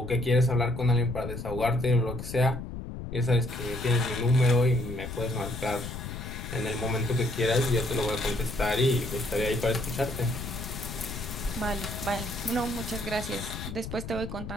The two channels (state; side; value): noise; left; rumble, 8 dB below the sound